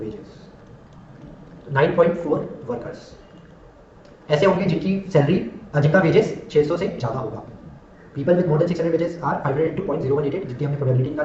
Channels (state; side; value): identical; both; correlation 1.00